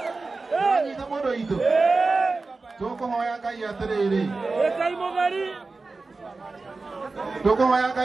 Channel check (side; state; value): left; quieter; 3.8 dB